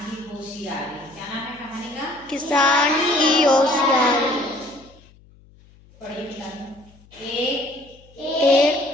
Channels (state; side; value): noise; left; hum, 27 dB below the sound